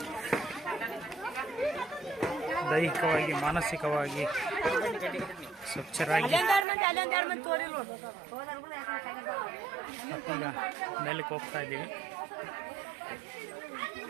ದೈಹಿಕವಾಗಿ ಮಾನಸಿಕವಾಗಿ ಸ್ವಚ್ಛರಾಗಿ ಮತ್ತೀಗ ಮೇಲಕ್ಕೆ ಹೋಗ್ತಾ ಇದ್ದೀವಿ.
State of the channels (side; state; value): left; drops out; at 6.7 s